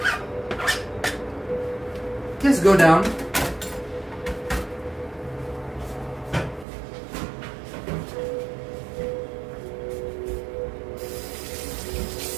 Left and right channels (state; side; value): drops out; left; at 6.7 s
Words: Just go down.